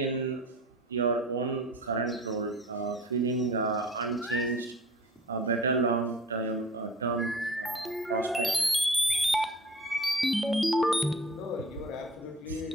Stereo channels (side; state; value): both; normal; correlation 0.43